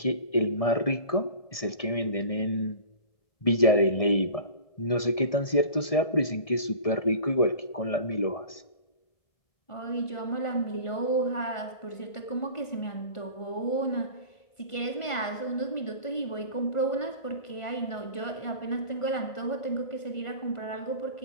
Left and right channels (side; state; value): right; late; 1.7 ms